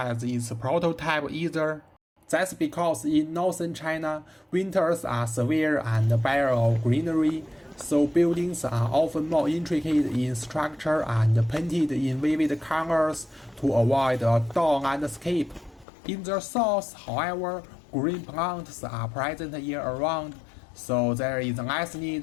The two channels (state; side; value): drops out; right; at 15.9 s